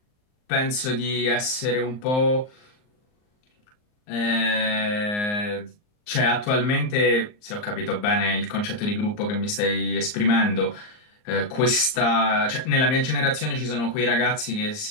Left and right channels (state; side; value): late; right; 39 ms